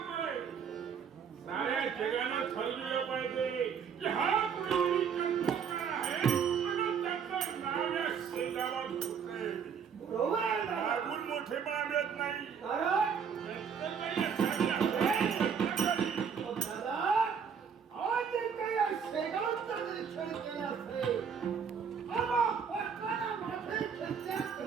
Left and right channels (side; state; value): left; quieter; 6.9 dB